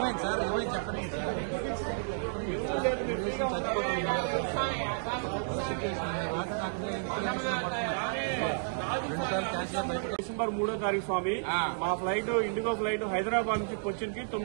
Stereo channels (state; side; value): silent; left; digital silence